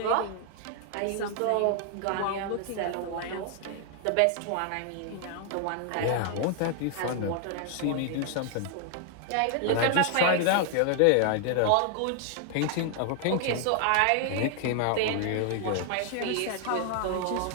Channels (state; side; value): different; both; correlation 0.00